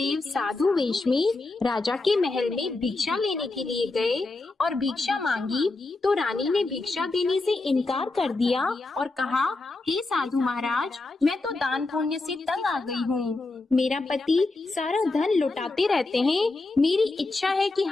साधु वेश में राजा के महल में भिक्षा लेने के लिए गए और भिक्षा मांगी, तो रानी ने भिक्षा देने से इनकार कर दिया और कहा, हे साधु महाराज, मैं तो दान पुण्य से तंग आ गई हूँ। मेरा पति सारा धन लुटाते रहते हैं। मेरी इच्छा है कि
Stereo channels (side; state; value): right; quieter; 3.3 dB